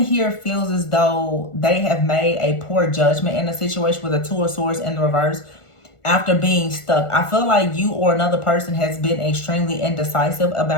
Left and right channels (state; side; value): late; right; 1.5 ms